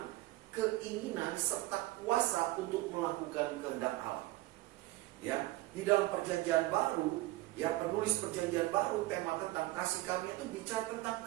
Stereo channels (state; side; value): quieter; left; 18.6 dB